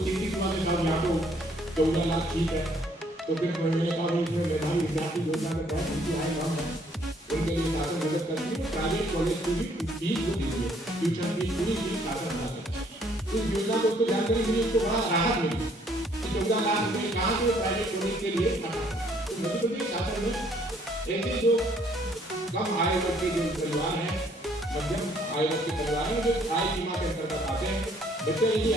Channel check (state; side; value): normal; both; correlation 0.64